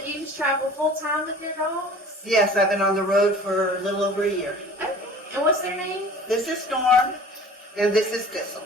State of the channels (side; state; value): both; normal; correlation 0.44